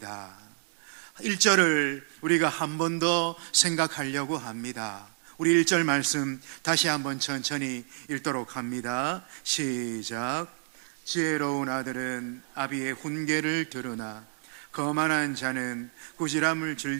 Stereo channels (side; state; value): left; silent; 58 dB below the other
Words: 1절을 우리가 한 번 더 생각하려고 합니다. 우리 1절 말씀 다시 한번 천천히 읽도록 합니다. 시작. 지혜로운 아들은 아비의 훈계를 들으나 거만한 자는 꾸지람을